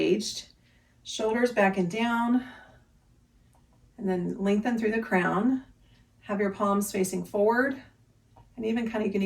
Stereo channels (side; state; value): both; identical; correlation 1.00